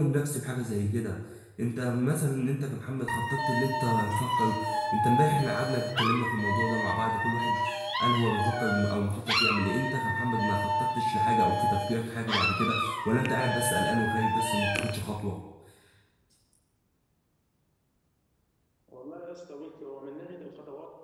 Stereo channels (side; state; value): both; identical; correlation 1.00